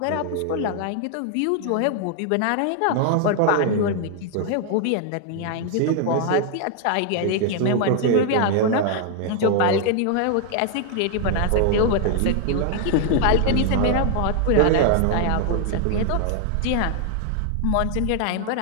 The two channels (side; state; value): both; different; correlation 0.00